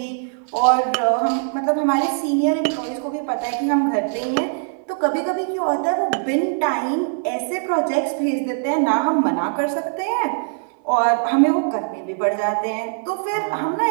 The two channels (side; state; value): left; silent; 61 dB below the other